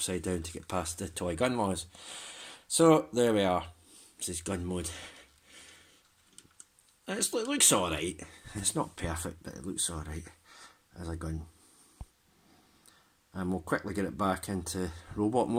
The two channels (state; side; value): identical; both; correlation 1.00